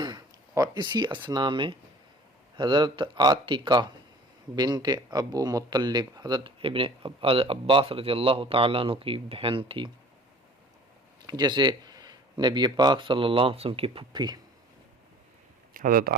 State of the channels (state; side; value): normal; both; correlation 0.48